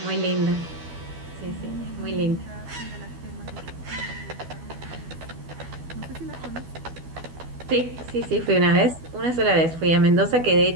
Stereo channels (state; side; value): late; left; 12 ms